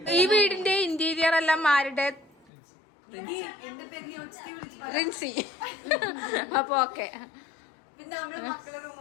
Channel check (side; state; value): right; drops out; at 2.5 s